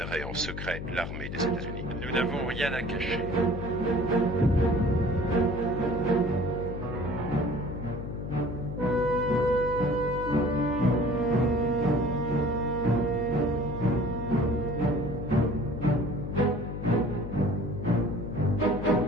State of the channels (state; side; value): noise; left; hum, 7 dB below the sound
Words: en secret l'armée des États-Unis. Nous n'avons rien à cacher.